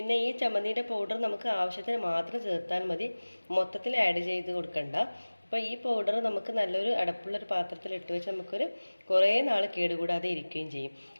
ഈ ചമ്മന്തിയുടെ പൗഡർ നമുക്ക് ആവശ്യത്തിന് മാത്രം ചേർത്താൽ മതി, മൊത്തത്തിൽ ആഡ് ചെയ്ത് കൊടുക്കണ്ട. അപ്പോൾ ഈ പൗഡർ നമുക്ക് നല്ലൊരു അടപ്പുള്ളൊരു പാത്രത്തിൽ ഇട്ട് വെച്ച് നമുക്കൊരു കുറേ നാൾ കേടുകൂടാതെ ഇരിക്കുകയും ചെയ്യും.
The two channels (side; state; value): both; inverted; correlation -1.00